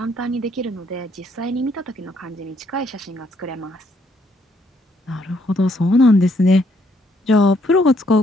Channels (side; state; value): both; normal; correlation 0.70